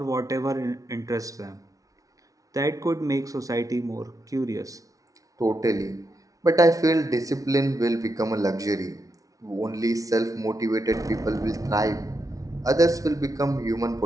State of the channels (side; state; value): left; late; 0.17 ms